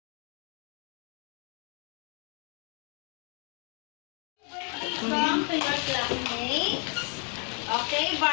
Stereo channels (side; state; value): right; quieter; 39.1 dB